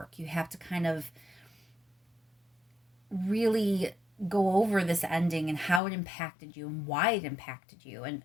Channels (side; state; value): right; drops out; at 5.8 s